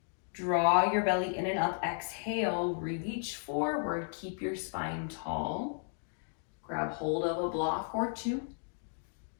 Draw your belly in and up. Exhale, reach forward. Keep your spine tall. Grab hold of a block or two.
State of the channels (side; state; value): right; silent; digital silence